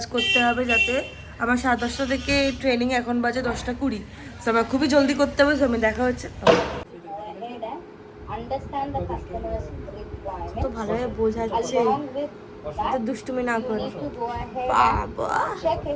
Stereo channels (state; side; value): identical; both; correlation 1.00